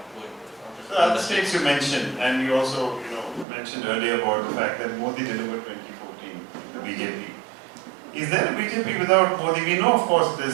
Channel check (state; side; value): drops out; left; at 3.5 s